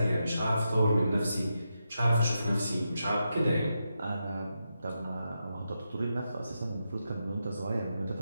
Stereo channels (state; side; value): inverted; both; correlation -0.86